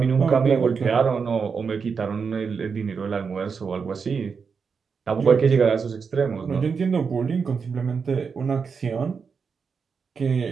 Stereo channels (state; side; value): quieter; left; 5.7 dB